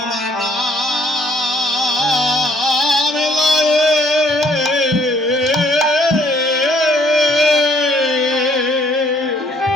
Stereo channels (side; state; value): both; normal; correlation 0.64